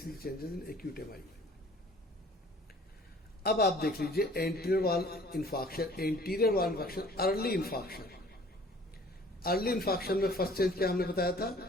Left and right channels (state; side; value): normal; both; correlation 0.52